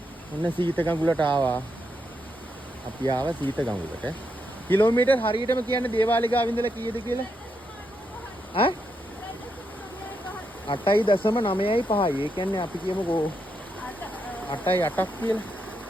ඔන්න සීත ගඟුලට ආවා. අපි ආවා සීත ගඟුලට. කිලෝමීටර් හරියටම කියන්නේ දේවාලේ ගාව ඉඳලා කීයද කියලා? ඈ 8.9.5යි. ඒ කියන්නේ අපි කියමුකෝ 8.8ක් කියලා.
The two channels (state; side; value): normal; both; correlation 0.81